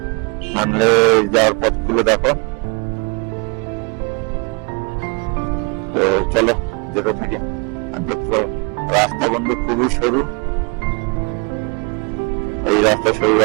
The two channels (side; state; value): left; quieter; 32.1 dB